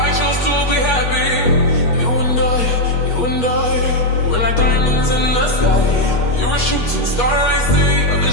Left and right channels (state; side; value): late; right; 8.3 ms